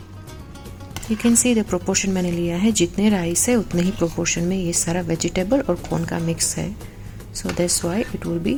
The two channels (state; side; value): identical; both; correlation 1.00